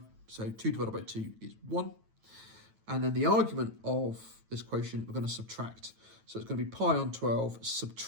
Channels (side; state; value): left; late; 9.1 ms